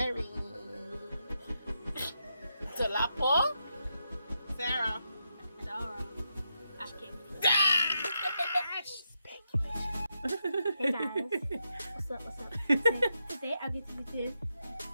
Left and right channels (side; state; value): both; inverted; correlation -0.85